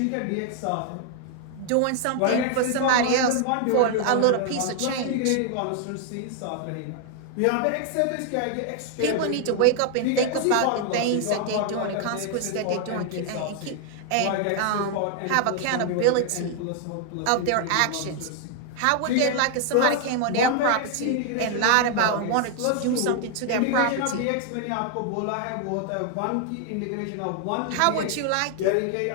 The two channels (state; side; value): different; both; correlation 0.00